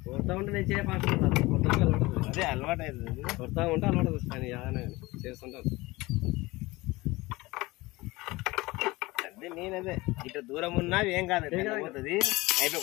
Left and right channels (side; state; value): right; quieter; 21.2 dB